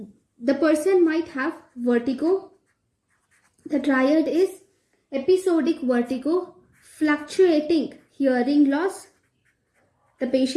the person might have vertigo. The triad is episodic vertigo, fluctuating hearing loss. The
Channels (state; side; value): identical; both; correlation 1.00